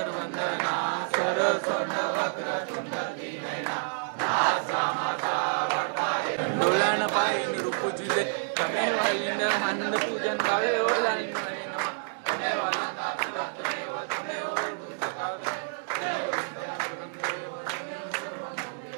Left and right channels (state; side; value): silent; left; digital silence